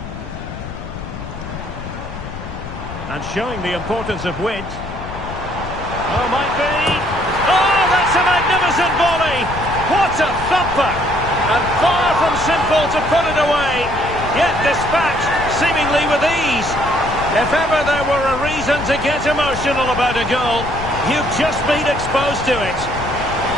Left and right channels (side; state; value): left; noise; rumble, 10 dB below the sound